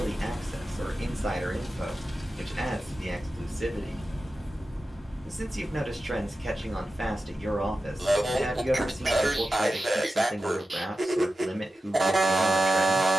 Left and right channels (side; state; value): both; normal; correlation 0.93